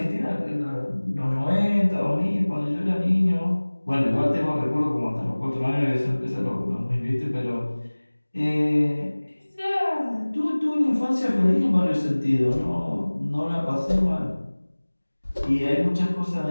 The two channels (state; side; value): inverted; both; correlation -1.00